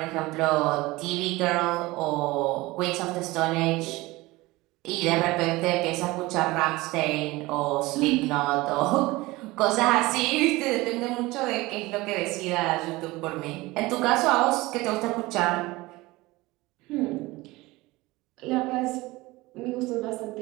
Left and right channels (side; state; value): left; quieter; 20.7 dB